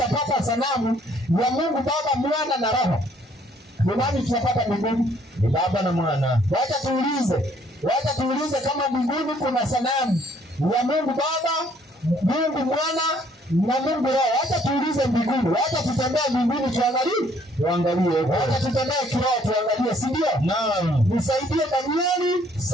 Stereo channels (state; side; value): normal; both; correlation 0.63